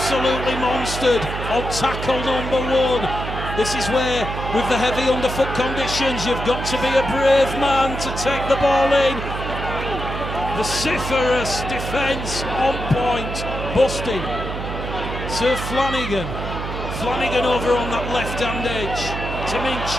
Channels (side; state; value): right; noise; hum, 6 dB below the sound